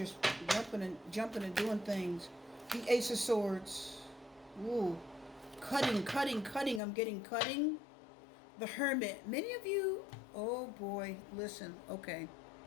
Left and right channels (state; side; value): drops out; right; at 6.8 s